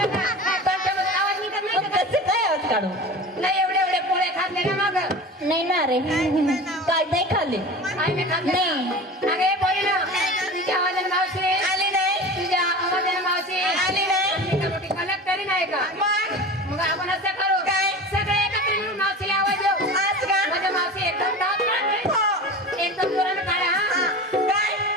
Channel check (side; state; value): both; normal; correlation 0.33